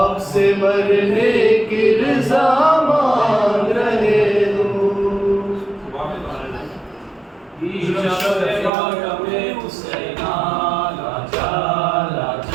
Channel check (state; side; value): drops out; left; at 8.7 s